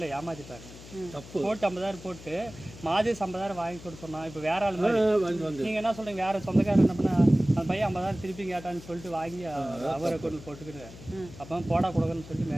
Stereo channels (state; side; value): noise; left; hum, 17 dB below the sound